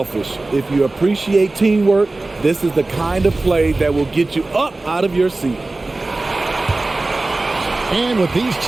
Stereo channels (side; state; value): left; quieter; 3.1 dB